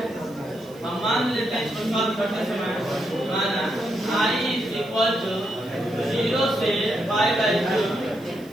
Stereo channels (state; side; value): noise; right; hiss, 25 dB below the sound